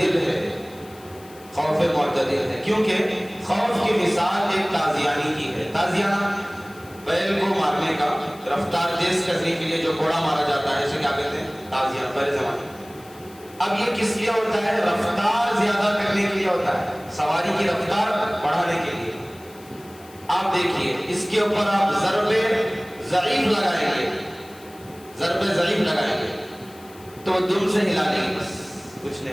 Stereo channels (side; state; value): left; noise; hiss, 24 dB below the sound